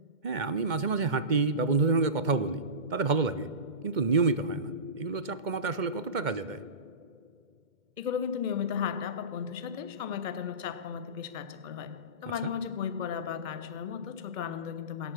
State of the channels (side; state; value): left; late; 2.2 ms